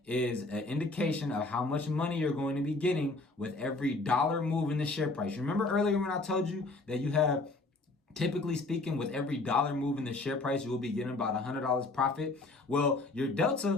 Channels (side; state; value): right; quieter; 3.2 dB